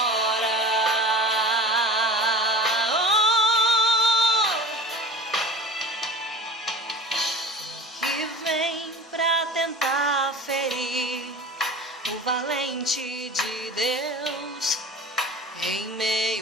Que vem pra tentar ferir o valente de Deus em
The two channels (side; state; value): both; normal; correlation 0.38